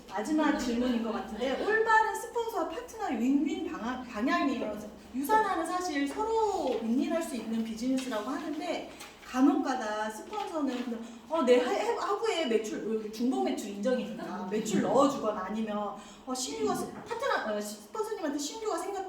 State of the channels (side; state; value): both; identical; correlation 1.00